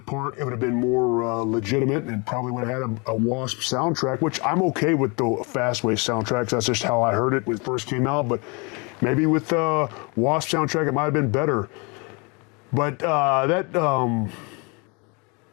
part, it would have been more legitimate, and probably would have had a W.A.S.P soundtrack, which I'm okay with the Fastway soundtracks. That's just how I heard it when it first came out. But maybe with the W.A.S.P soundtrack, it might have been better. But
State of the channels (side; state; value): right; quieter; 30.9 dB